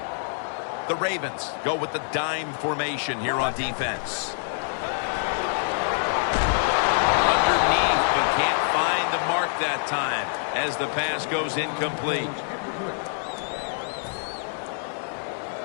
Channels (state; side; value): silent; right; digital silence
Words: The Ravens go with the dime formation here on defense. Underneath, but can't find the mark that time as the pass goes incomplete.